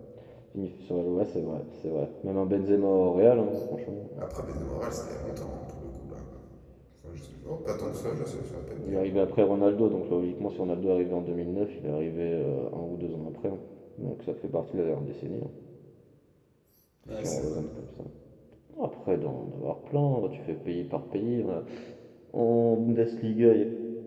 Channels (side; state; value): both; identical; correlation 1.00